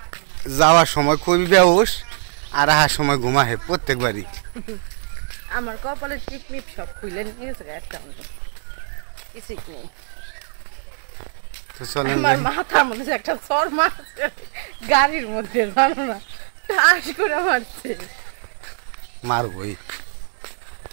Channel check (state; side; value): silent; left; 64 dB below the other